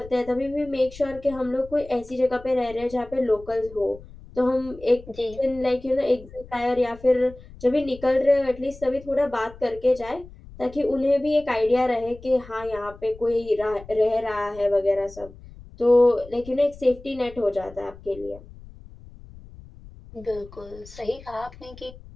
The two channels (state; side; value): noise; left; rumble, 19 dB below the sound